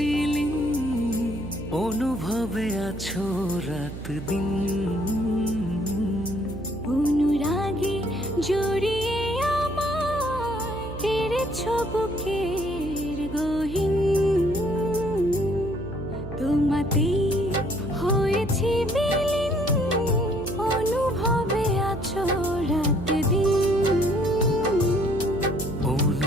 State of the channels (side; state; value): right; noise; hum, 10 dB below the sound